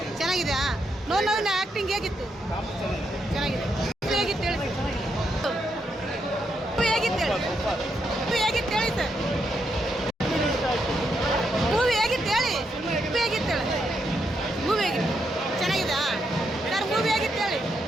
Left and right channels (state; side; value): normal; both; correlation 0.80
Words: ಚೆನ್ನಾಗಿದೆಯಾ? ನೋವಿನ ಆ್ಯಕ್ಟಿಂಗ್ ಹೇಗಿತ್ತು? ಚೆನ್ನಾಗಿದೆ. ಹೇಗಿತ್ತು ಹೇಳಿ ಸರ್? ಮೂವಿ ಹೇಗಿತ್ತು ಹೇಳಿ? ಮೂವಿ ಹೇಗಿತ್ತು ಹೇಳಿ ಸರ್? ಮೂವಿ ಹೇಗಿತ್ತು ಹೇಳಿ? ಮೂವಿ ಹೇಗಿತ್ತು ಹೇಳಿ? ಮೂವಿ ಹೇಗಿತ್ತು? ಚೆನ್ನಾಗಿದೆಯಾ ಸರ್? ಮೂವಿ ಹೇಗಿತ್ತು ಹೇಳಿ?